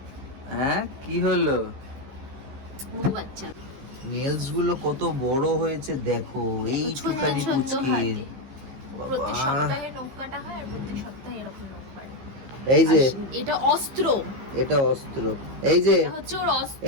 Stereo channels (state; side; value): late; left; 15 ms